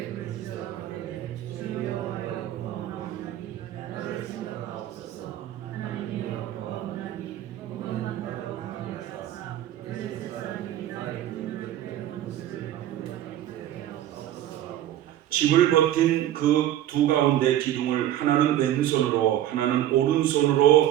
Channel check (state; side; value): quieter; left; 12.5 dB